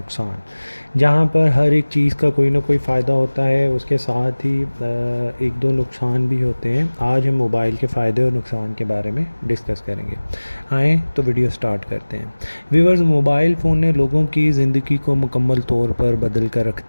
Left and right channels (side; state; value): both; inverted; correlation -1.00